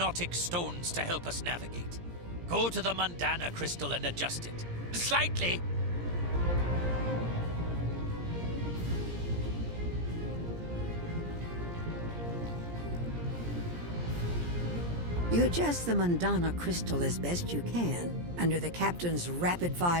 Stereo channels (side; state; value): left; late; 17 ms